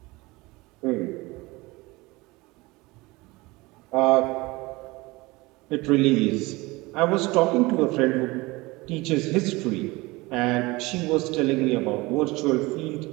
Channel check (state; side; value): quieter; left; 22.4 dB